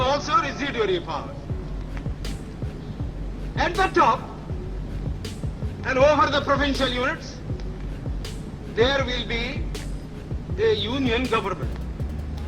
also residuary powers. At the top and over the provincial units, there will be a union government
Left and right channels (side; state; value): both; identical; correlation 1.00